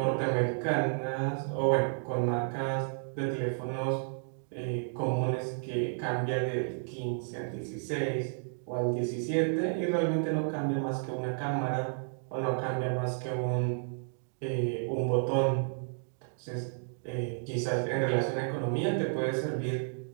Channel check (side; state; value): left; silent; digital silence